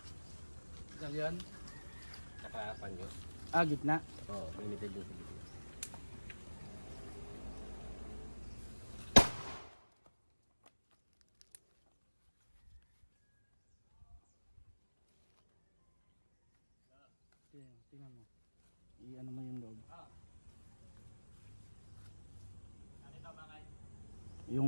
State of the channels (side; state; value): both; inverted; correlation -1.00